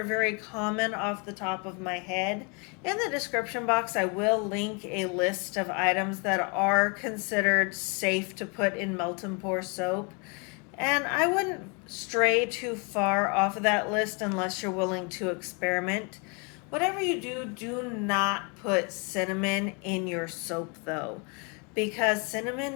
very common off the top of my head. In the description box, I will link a list of items that are considered safe to put in melt and pour soap. And I wouldn't stray too far off of that list unless you're willing to experiment. Whatever you do, do not put cinnamon in your soap though, because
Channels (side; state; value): right; quieter; 33.0 dB